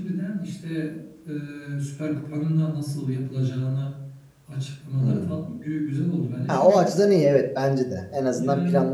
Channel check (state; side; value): identical; both; correlation 1.00